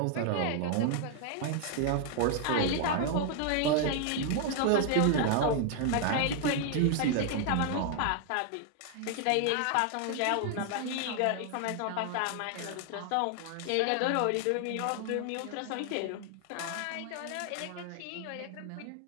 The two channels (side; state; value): both; different; correlation 0.00